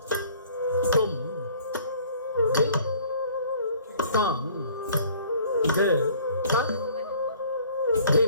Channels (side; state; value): both; inverted; correlation -0.54